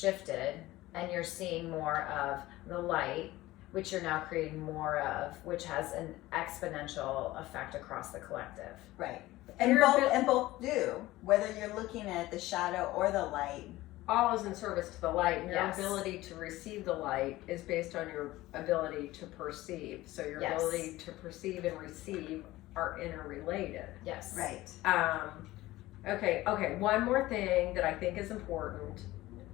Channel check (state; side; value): quieter; right; 17.5 dB